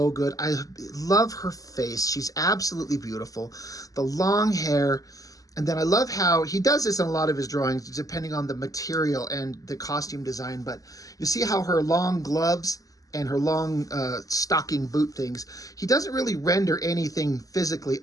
good. I love her face. She's absolutely beautiful. The long hair. And then I love how he does this in a lot of his drawings, depending on the material and the costume design. But you see how her long gloves and her long stocking boot things, he doesn't really render anything physically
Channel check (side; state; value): right; late; 0.17 ms